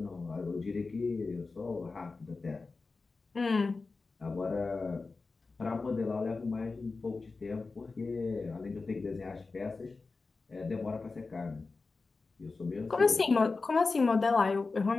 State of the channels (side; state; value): right; quieter; 4.0 dB